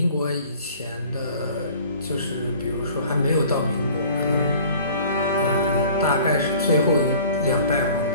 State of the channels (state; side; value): inverted; both; correlation -0.48